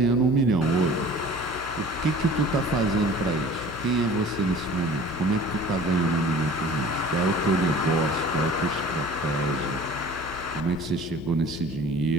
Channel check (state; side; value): noise; left; hum, 14 dB below the sound